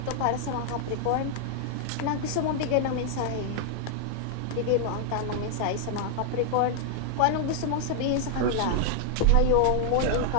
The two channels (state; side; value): different; both; correlation -0.01